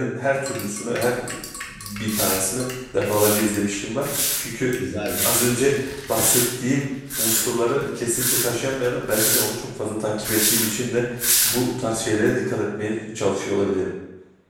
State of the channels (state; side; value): identical; both; correlation 1.00